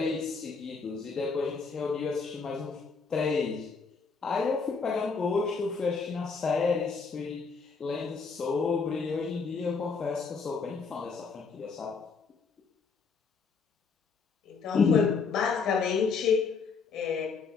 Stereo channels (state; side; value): quieter; right; 5.0 dB